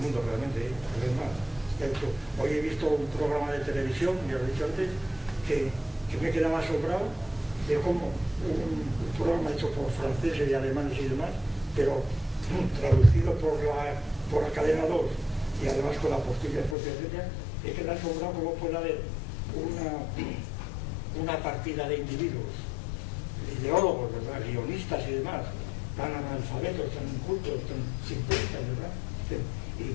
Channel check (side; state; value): right; drops out; at 16.8 s